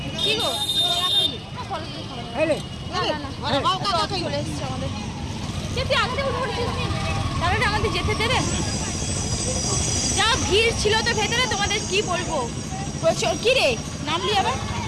কি গো, চলে এসছে আমাদের। তুই আগে উঠে পড়েছিস, তাহলে আমাদের যেতে দেবে? যা ভিড় ছিল তো ভেতরে, তোমাদের কি বলবো। প্রচুর, কি রে নামলি আবার?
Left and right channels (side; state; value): both; identical; correlation 1.00